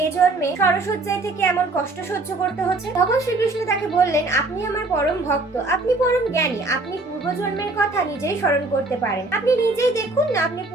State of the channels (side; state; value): left; quieter; 3.2 dB